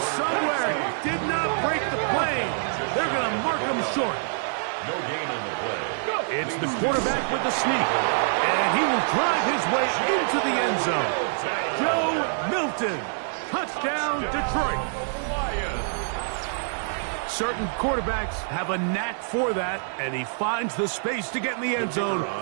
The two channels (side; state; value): left; silent; 58 dB below the other